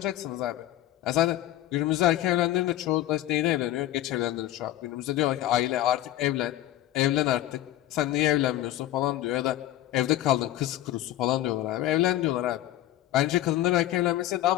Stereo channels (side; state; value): right; quieter; 14.2 dB